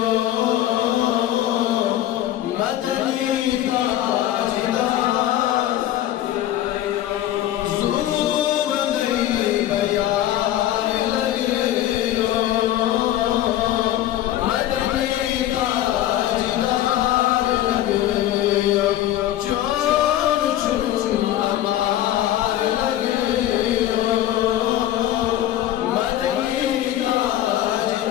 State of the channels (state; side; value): quieter; right; 13.0 dB